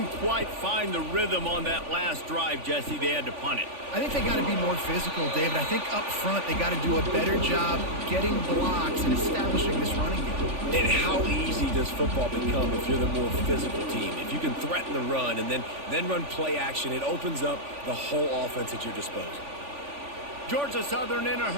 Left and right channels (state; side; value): late; left; 3.5 ms